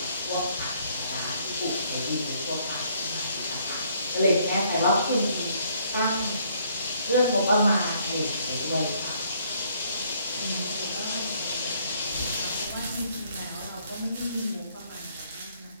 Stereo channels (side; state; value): both; inverted; correlation -0.66